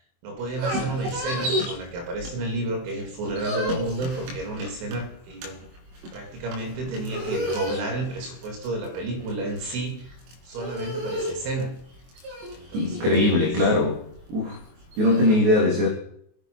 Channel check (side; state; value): left; late; 23 ms